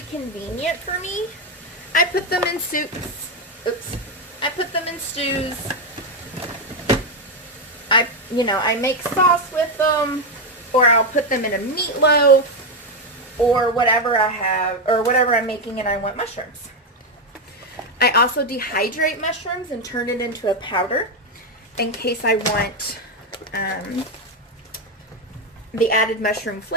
convenient for me. I put them in soups. I put them in stews. I make sauce with them, or I'll put them in a meatloaf, or whatever I have, or whatever I'm making and I want mushrooms. I also dehydrate mushrooms and turn it into a powder in case I want the added mushroom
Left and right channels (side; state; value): both; normal; correlation 0.07